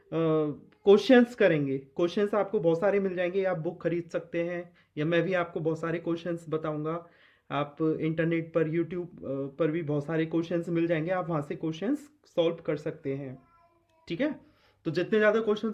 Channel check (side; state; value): both; identical; correlation 1.00